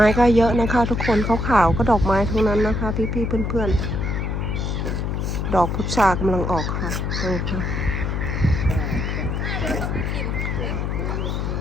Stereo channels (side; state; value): left; noise; hum, 1 dB below the sound